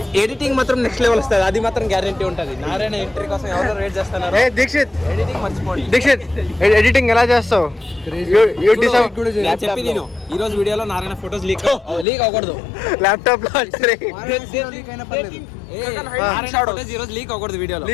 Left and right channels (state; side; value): drops out; right; at 12.1 s